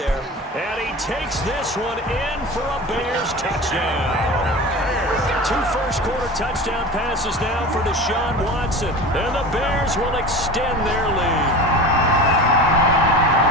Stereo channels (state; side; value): normal; both; correlation 0.33